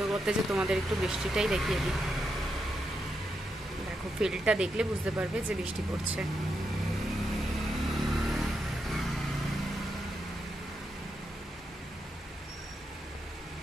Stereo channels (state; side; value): normal; both; correlation 0.83